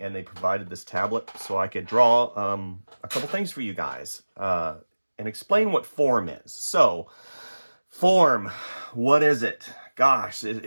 they provided this tablet so I could draw a couple things for you guys and explain what form is. So, form, what is it? Gosh,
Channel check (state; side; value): inverted; both; correlation -1.00